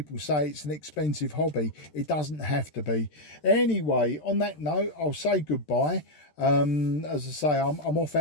say it's an expensive hobby. It doesn't have to be. Anyway, on that note, I'll say goodbye. As I say, I'm off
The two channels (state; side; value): late; right; 13 ms